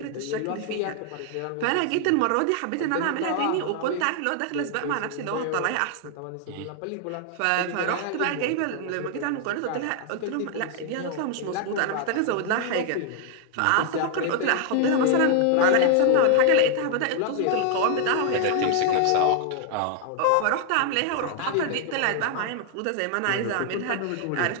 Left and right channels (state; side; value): different; both; correlation 0.00